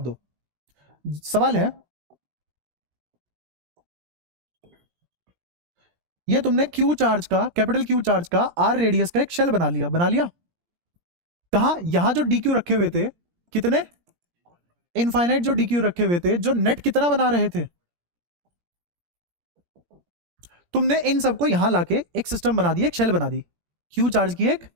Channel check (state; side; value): late; left; 17 ms